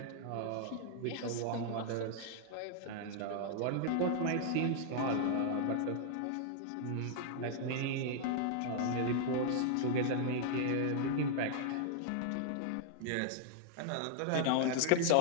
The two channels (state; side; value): different; both; correlation -0.01